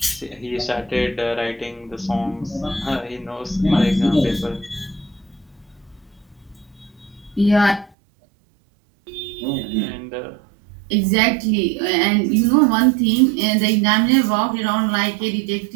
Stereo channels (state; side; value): drops out; left; at 7.9 s